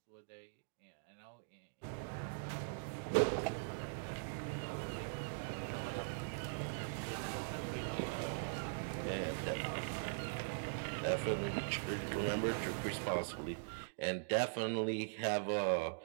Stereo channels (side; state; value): left; silent; digital silence